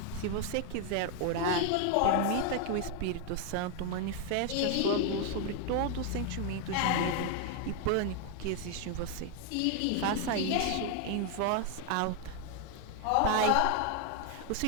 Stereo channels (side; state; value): both; different; correlation 0.01